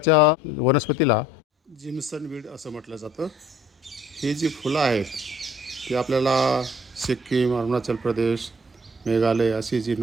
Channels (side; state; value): both; normal; correlation 0.57